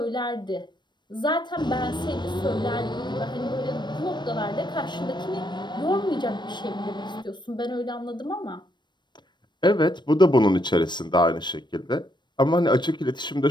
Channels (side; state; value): right; late; 0.22 ms